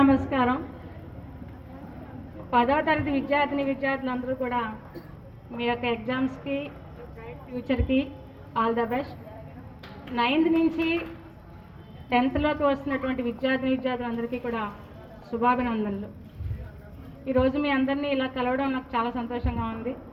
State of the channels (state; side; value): identical; both; correlation 1.00